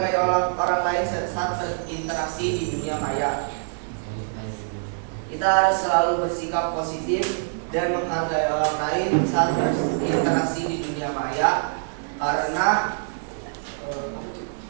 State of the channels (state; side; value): silent; left; digital silence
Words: orang lain saat berinteraksi di dunia maya? Kita harus selalu bersikap positif dan menghargai orang lain saat berinteraksi di dunia maya karena